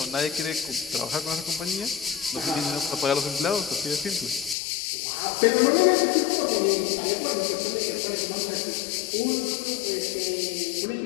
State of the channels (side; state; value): right; drops out; at 4.5 s